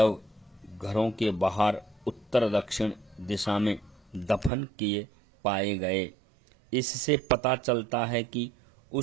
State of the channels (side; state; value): left; drops out; at 4.5 s